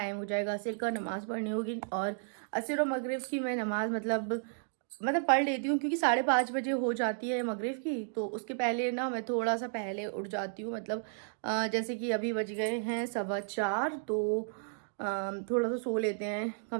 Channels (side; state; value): left; silent; digital silence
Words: हो जाएगा, असर का नमाज़ पढ़नी होगी। और असर और मगरिब की मैं नमाज़ मतलब पढ़ लेती हूँ, क्योंकि 5:30 बजे हो जाती है मगरिब की। तो उसके पहले ना मैं थोड़ा सा पहले उठ जाती हूँ, मतलब जैसे कि अभी बज गए हैं 4:15, तो थोड़ा सा सो लेते हैं